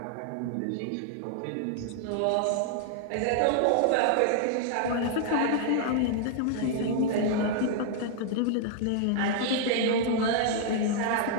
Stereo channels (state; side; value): different; both; correlation 0.00